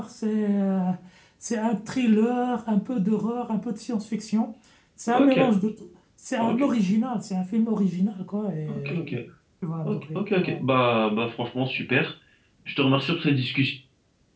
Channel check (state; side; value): identical; both; correlation 1.00